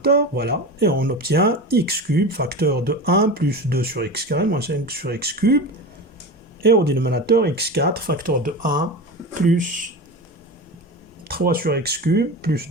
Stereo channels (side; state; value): both; normal; correlation 0.27